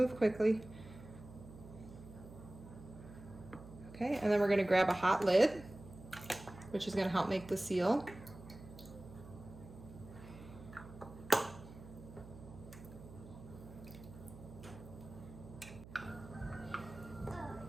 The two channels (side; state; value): right; noise; hum, 16 dB below the sound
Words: quickly. Okay, and then we're gonna grab a hot lid, which is gonna help make the seal.